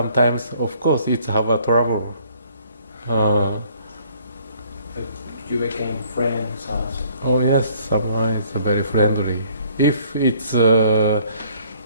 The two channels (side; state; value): both; inverted; correlation -0.60